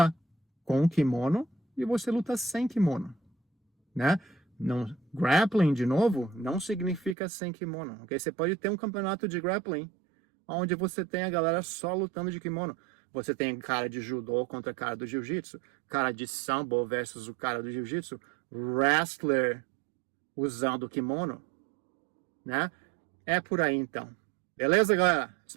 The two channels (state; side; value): drops out; left; at 7.2 s